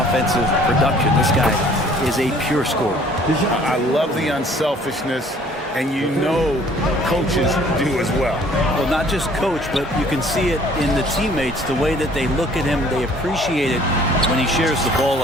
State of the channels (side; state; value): both; normal; correlation 0.56